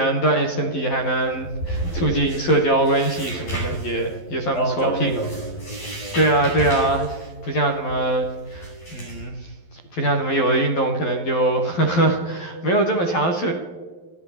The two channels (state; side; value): late; right; 11 ms